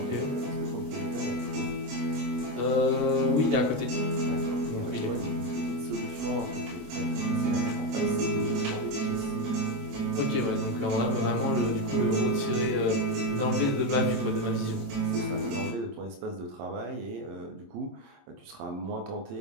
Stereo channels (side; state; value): left; late; 25 ms